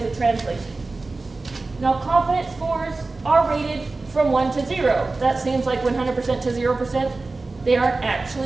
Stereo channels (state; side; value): quieter; left; 3.5 dB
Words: a translation. Now, confidence scores are rated from 1 to 0. That seems like 100% to 0%. They aren't